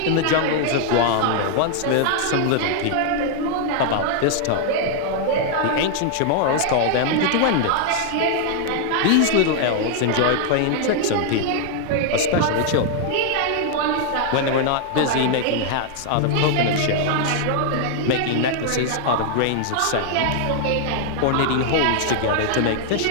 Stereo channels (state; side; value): different; both; correlation 0.00